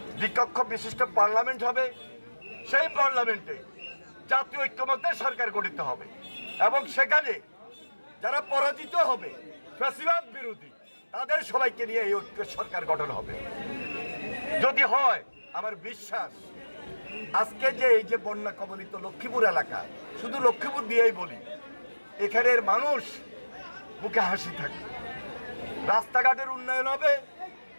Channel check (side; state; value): both; inverted; correlation -1.00